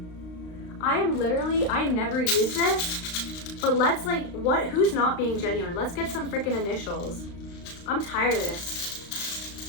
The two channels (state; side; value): late; right; 35 ms